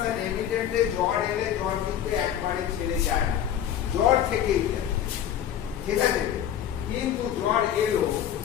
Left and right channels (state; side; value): quieter; right; 10.0 dB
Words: আর এমিটেন্টে জ্বর এলে জ্বর কিন্তু একবারে ছেড়ে যায় না, জ্বর থেকেই যায়, ঠিক আছে। কিন্তু জ্বর এলো,